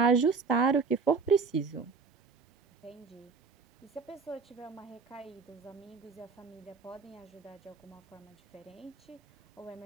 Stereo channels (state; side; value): quieter; left; 4.9 dB